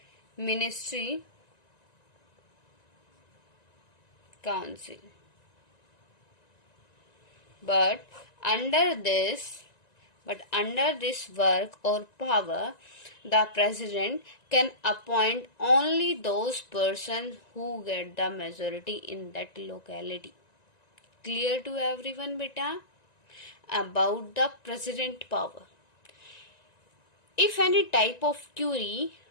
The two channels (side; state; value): right; late; 1.9 ms